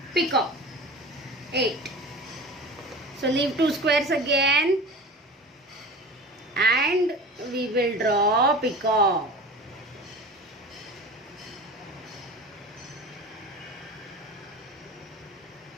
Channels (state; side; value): normal; both; correlation 0.35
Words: peacock 8. So leave 2 squares again and we will draw peacock.